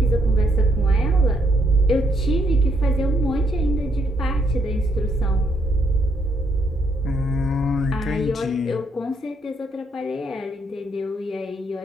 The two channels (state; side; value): normal; both; correlation 0.73